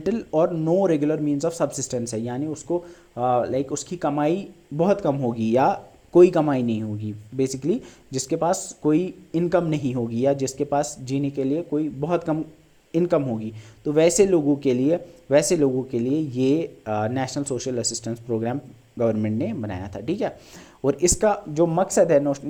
और no regular means of subsistence है, यानी उसको उसकी कमाई बहुत कम होगी या कोई कमाई नहीं होगी, बेसिकली जिसके पास कोई इनकम नहीं होगी या जिसके पास जीने के लिए कोई बहुत कम इनकम होगी। तो वैसे लोगों के लिए ये national social assistance programme government ने बनाया था। ठीक है, और इसका जो मकसद है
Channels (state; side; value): identical; both; correlation 1.00